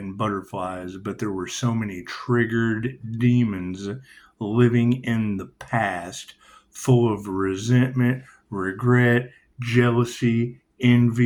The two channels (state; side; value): identical; both; correlation 1.00